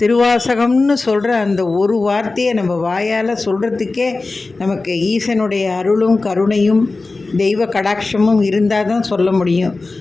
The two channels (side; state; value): right; quieter; 3.5 dB